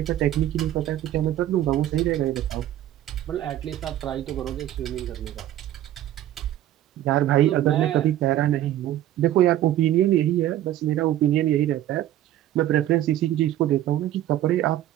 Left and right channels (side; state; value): left; quieter; 12.8 dB